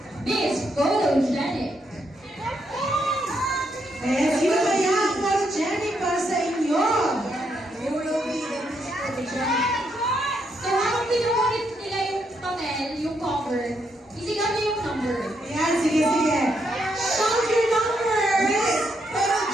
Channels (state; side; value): normal; both; correlation 0.78